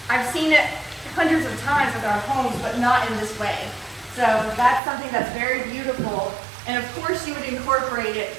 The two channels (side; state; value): left; drops out; at 4.8 s